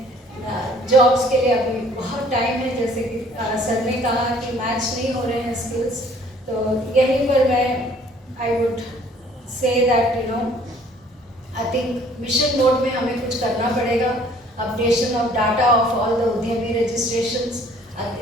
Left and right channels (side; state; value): both; normal; correlation 0.57